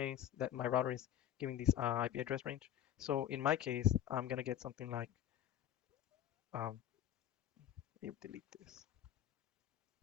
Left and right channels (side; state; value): right; quieter; 11.1 dB